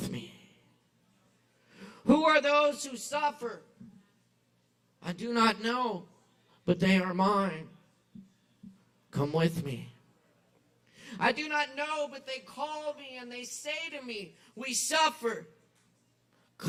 me. Who are those who suffer? I do not know, but they are mine. Come with me. I do not know, but they call me and they say to me, we suffer.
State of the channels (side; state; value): both; identical; correlation 1.00